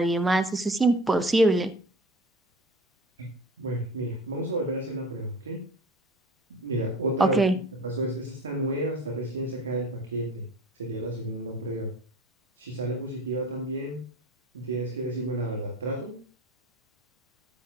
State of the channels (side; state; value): both; normal; correlation 0.40